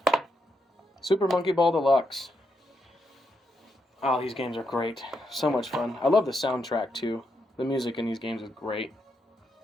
Super Monkey Ball Deluxe. Oh, these games are great. So much fun. I love the soundtrack too. The music in these games is great.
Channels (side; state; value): both; normal; correlation 0.81